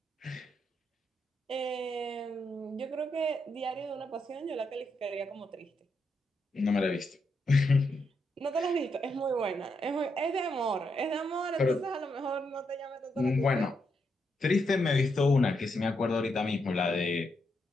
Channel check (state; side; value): normal; both; correlation 0.81